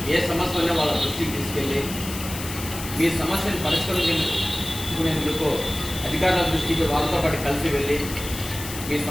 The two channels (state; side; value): noise; left; hiss, 10 dB below the sound